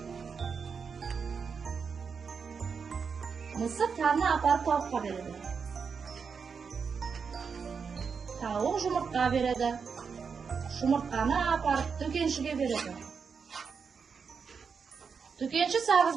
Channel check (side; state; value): left; quieter; 5.9 dB